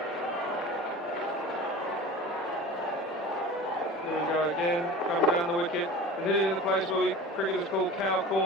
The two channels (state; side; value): normal; both; correlation 0.36